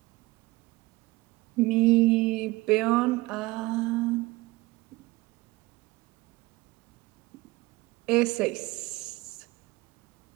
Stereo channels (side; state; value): left; quieter; 20.5 dB